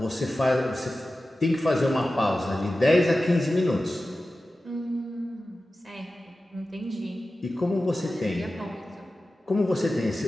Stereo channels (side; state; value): both; normal; correlation 0.94